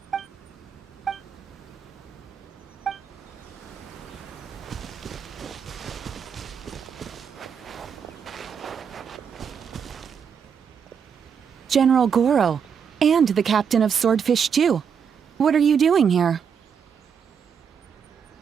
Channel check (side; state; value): left; quieter; 7.1 dB